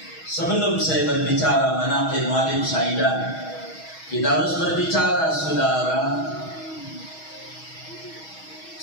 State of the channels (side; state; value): right; late; 6.3 ms